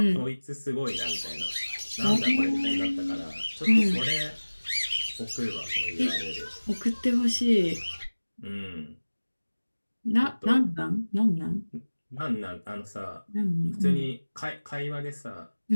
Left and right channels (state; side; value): inverted; both; correlation -1.00